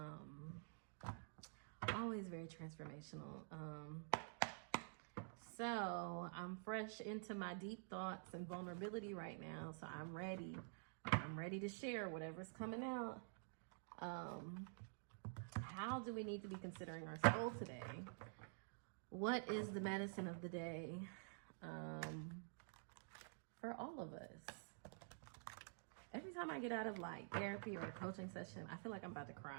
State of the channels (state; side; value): silent; left; digital silence